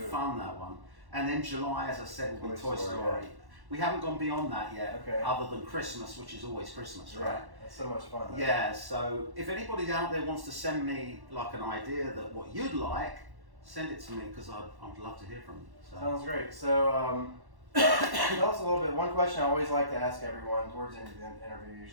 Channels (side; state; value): left; late; 1.1 ms